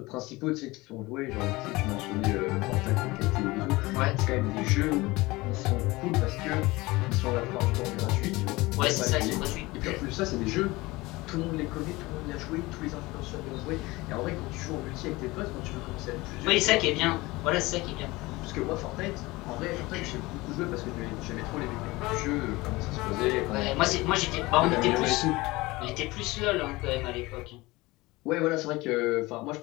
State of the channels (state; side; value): quieter; right; 21.3 dB